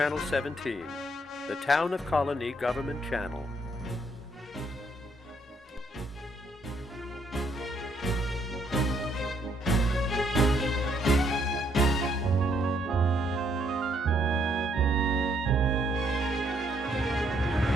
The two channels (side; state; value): both; normal; correlation 0.71